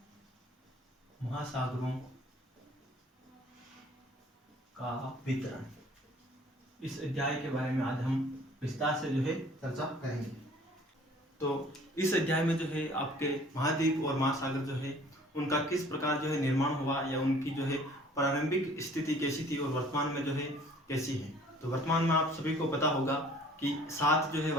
महासागरों का वितरण। इस अध्याय के बारे में आज हम विस्तार से जो है चर्चा करेंगे। तो इस अध्याय में जो है आपके महाद्वीप और महासागर जो है उनका किस प्रकार जो है निर्माण हुआ या उनकी जो है प्रारंभिक स्थिति कैसी थी और वर्तमान में जो है कैसी है। तो वर्तमान में आप सभी को पता होगा कि 7 जो है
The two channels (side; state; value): both; normal; correlation 0.53